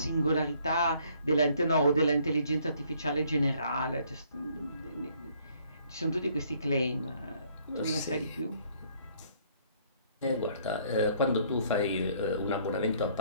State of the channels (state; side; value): inverted; both; correlation -0.63